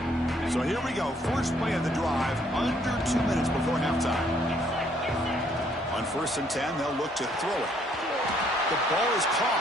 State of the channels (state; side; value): normal; both; correlation 0.67